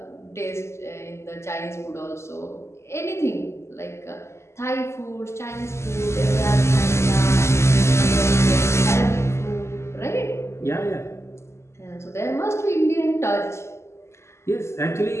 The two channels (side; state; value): right; late; 0.13 ms